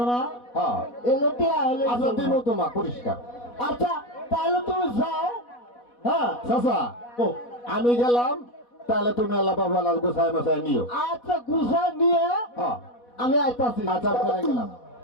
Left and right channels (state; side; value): late; right; 4.1 ms